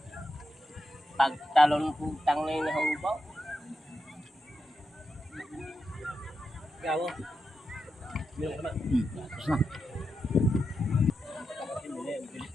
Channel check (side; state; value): both; normal; correlation 0.87